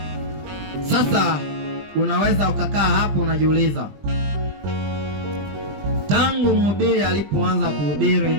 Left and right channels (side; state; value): left; late; 20 ms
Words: Sasa unaweza ukakaa hapo unajiuliza, Tangu mhubiri alipoanza kuhubiri,